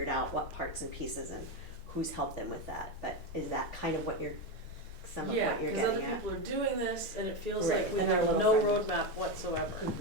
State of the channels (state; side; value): normal; both; correlation 0.12